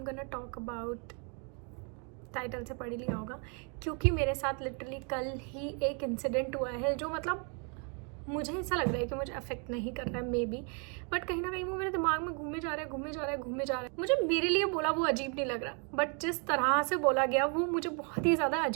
gonna talk about, title से पढ़ ही लिया होगा, क्योंकि मेरे साथ लिटरली कल ही एक इंसिडेंट हुआ है जो मतलब मुझे ऐसा लग रहा है कि मुझे अफेक्ट नहीं कर रहा है मे बी, बट कहीं ना कहीं वो मेरे दिमाग में घूमे जा रहा है। मुझे मेरे लिए बोला वो अजीब नहीं लग रहा, बट जिस तरह से बोला गया वो मुझे बहुत ही ज़्यादा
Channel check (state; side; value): quieter; left; 37.4 dB